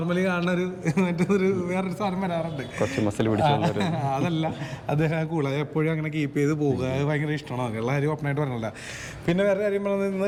കാണുന്ന മറ്റൊരു വേറൊരു സാധനം വരാറുണ്ട്, അതല്ല അദ്ദേഹം കൂളായി എപ്പോഴും അങ്ങനെ കീപ്പ് ചെയ്ത് പോകുക. അത് ഭയങ്കര ഇഷ്ടമാണ്. എല്ലാ കാര്യം ഓപ്പണായിട്ട് പറഞ്ഞില്ല. പിന്നെ വേറെ കാര്യം പറഞ്ഞത്, ഇന്ന്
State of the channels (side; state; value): both; identical; correlation 1.00